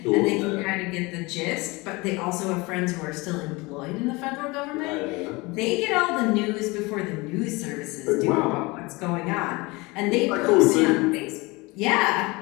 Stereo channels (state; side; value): quieter; right; 24.3 dB